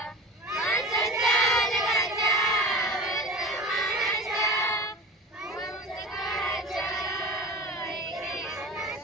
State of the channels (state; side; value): normal; both; correlation 0.34